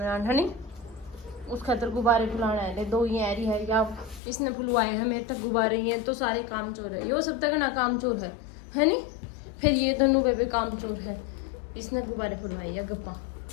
है नहीं, उस खातर गुब्बारे फुलाना है। 2 ही ऐरी है या इसने फुलवाए हैं मेरे तक गुब्बारे हैं तो सारे काम चोर है। यो सब तक ना काम चोर है नहीं। फिर ये दोनों बेबे काम चोर है, इसने गुब्बारे फुलवाए है। गप्पा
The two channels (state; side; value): drops out; right; at 4.2 s